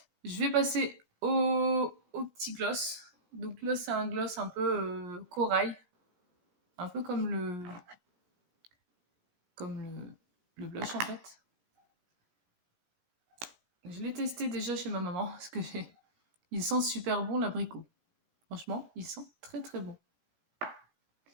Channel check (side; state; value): left; late; 18 ms